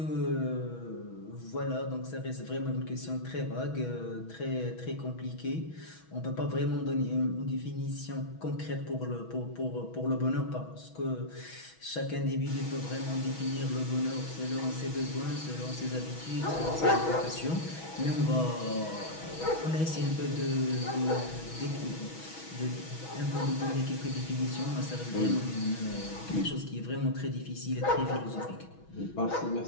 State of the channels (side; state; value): right; late; 6.2 ms